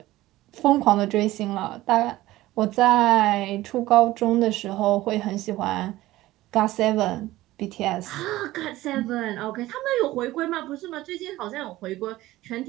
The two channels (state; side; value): quieter; left; 16.8 dB